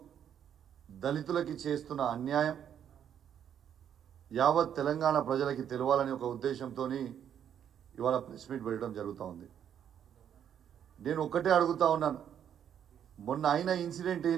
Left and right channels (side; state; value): left; quieter; 9.2 dB